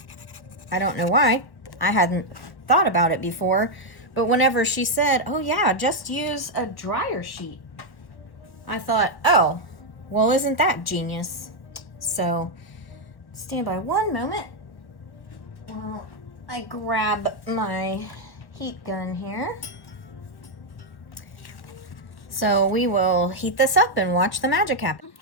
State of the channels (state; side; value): late; right; 1.0 ms